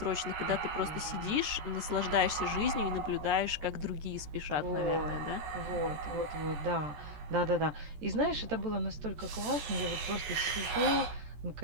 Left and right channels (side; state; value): left; late; 14 ms